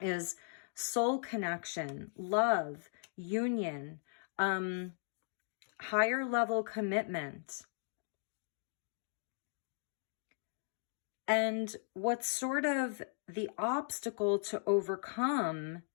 is soul connection, love, union, higher level commitment. And what's sort of the obstacle to overcome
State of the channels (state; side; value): silent; right; digital silence